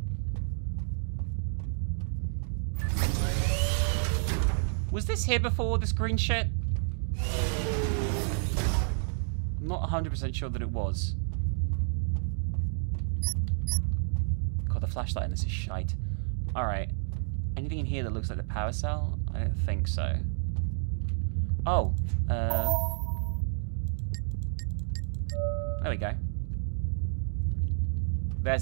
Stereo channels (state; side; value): silent; left; digital silence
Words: Was this here before, this green shit? I'm not 100% sure that it was. God, the flashlight in this is shite. Alright. Anything in here that looks like the power cell? I don't think so. Oh. There we go. There's